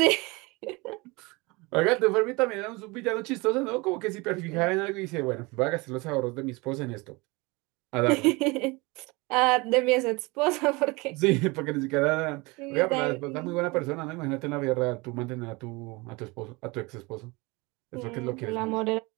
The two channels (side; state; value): left; quieter; 25.3 dB